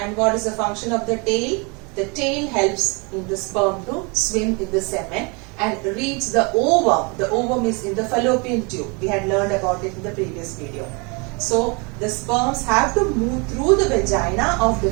what is the function of the tail? The tail helps in the sperm to swim in the semen and reach the ovum. The ovum is in the fallopian tube. We had learned about it in the previous video. So the sperms have to move through the vagina of the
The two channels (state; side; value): quieter; left; 31.1 dB